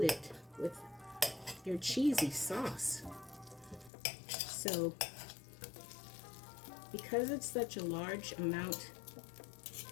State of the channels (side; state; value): right; drops out; at 3.9 s